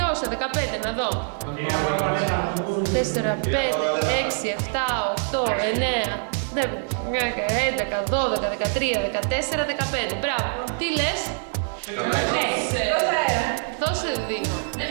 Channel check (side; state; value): left; silent; digital silence